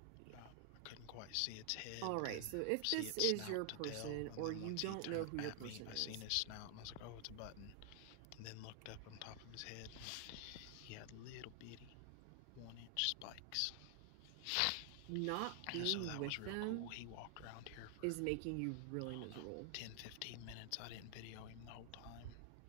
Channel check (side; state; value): both; different; correlation 0.00